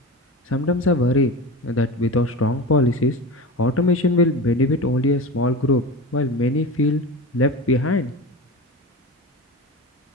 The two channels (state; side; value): normal; both; correlation 0.28